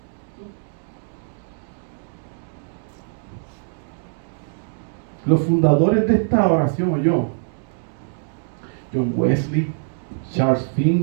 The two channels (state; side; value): silent; left; digital silence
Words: Los fundadores de esta oración, John Wesley, Charles